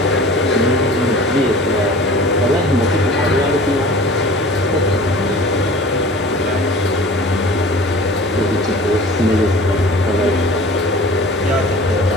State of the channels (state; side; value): normal; both; correlation 0.42